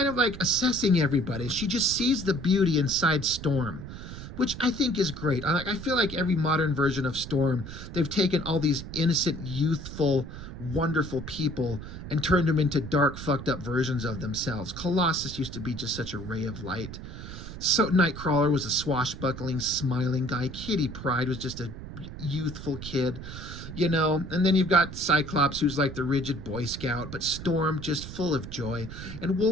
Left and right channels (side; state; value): right; noise; rumble, 11 dB below the sound